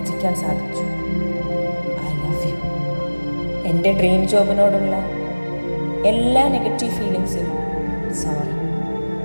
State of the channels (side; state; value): both; inverted; correlation -1.00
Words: സാധിച്ചു. I love you. എൻ്റെ ഡ്രീം ജോബിനോടുള്ള എല്ലാ നെഗറ്റീവ് ഫീലിങ്സിനും സോറി.